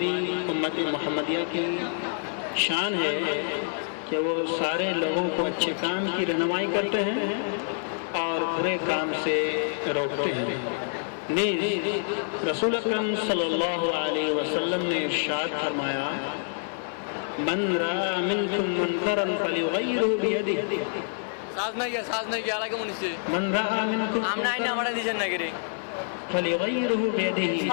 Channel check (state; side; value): silent; right; 55 dB below the other